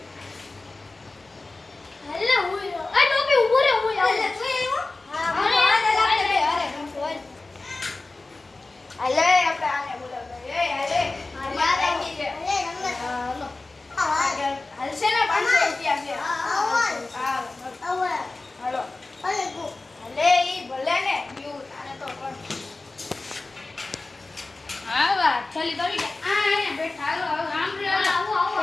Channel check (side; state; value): right; quieter; 3.3 dB